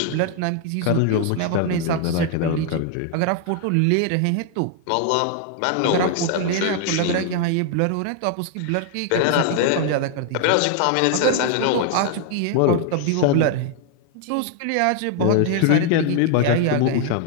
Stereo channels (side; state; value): both; different; correlation 0.00